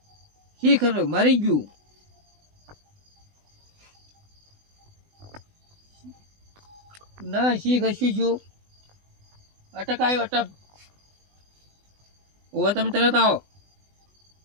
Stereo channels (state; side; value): late; left; 20 ms